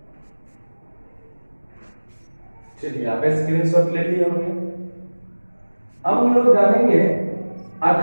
चलिए आप स्क्रीनशॉट ले लिए होंगे। अब हम लोग जानेंगे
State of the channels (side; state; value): both; inverted; correlation -1.00